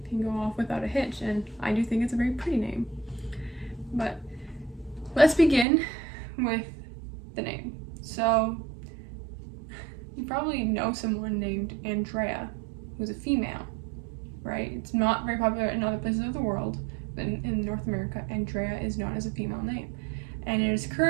can go off without a hitch, and I do think it's a very pretty name. But let's begin with the name. So you probably know someone named Andrea who's a female, right? It's not very popular in other places of the world, but in North America, Andrea is known as a female name. And it is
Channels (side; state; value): left; drops out; at 5.7 s